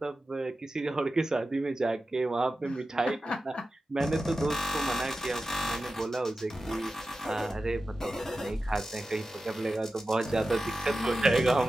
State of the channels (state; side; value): normal; both; correlation 0.93